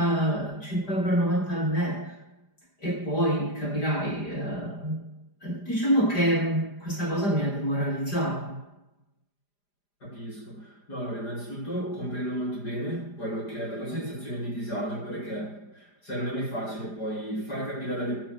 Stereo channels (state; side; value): late; right; 5.0 ms